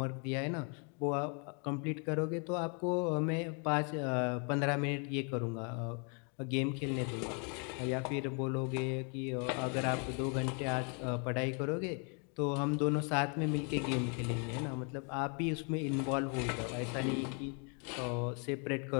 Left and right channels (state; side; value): quieter; right; 37.3 dB